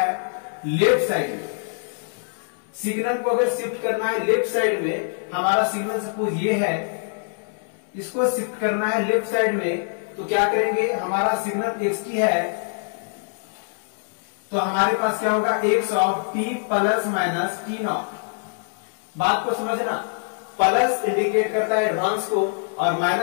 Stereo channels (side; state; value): right; silent; 63 dB below the other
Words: लेफ्ट साइड में, सिग्नल को अगर शिफ्ट करना है लेफ्ट साइड में, हमारा सिग्नल सपोज ये है, इसको शिफ्ट करना है लेफ्ट साइड में, तो क्या करेंगे, हमारा सिग्नल xt है तो हमारे पास क्या होगा, x of t plus minus t not. बात को समझना, प्लस इंडिकेट करता है एडवांस को और